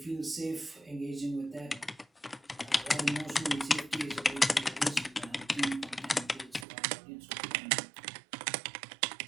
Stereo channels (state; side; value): drops out; left; at 6.7 s